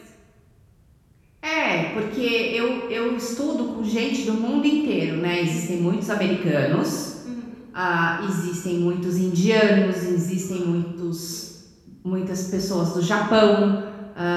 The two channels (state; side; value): identical; both; correlation 1.00